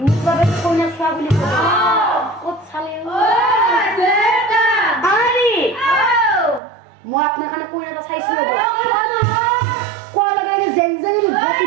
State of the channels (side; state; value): left; drops out; at 6.6 s